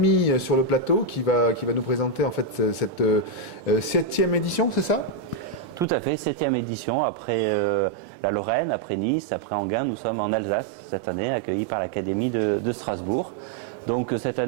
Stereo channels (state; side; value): drops out; left; at 5.9 s